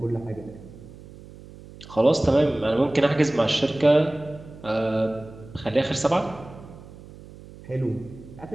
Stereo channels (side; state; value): right; noise; hum, 18 dB below the sound